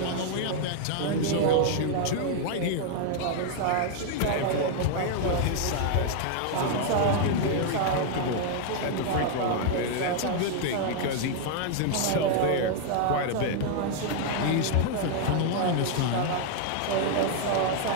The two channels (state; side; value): different; both; correlation 0.00